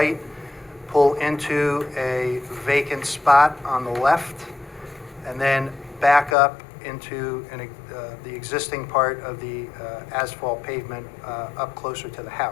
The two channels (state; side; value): drops out; right; at 6.4 s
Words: pull into a vacant spot on the left, and then back up into the existing part of the asphalt pavement up closer to the